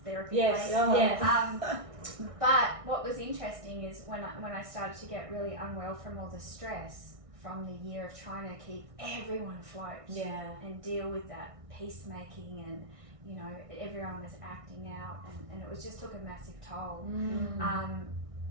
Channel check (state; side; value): late; left; 1.6 ms